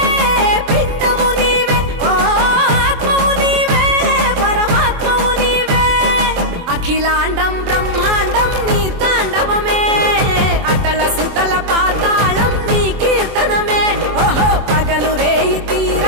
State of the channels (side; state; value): left; late; 24 ms